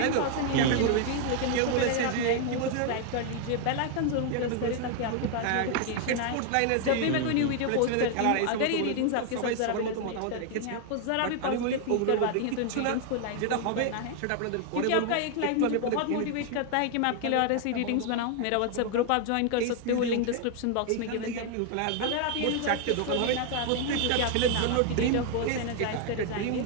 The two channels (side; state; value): both; different; correlation 0.00